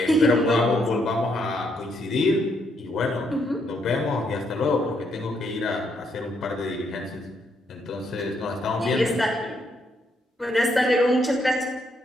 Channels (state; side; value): normal; both; correlation 0.75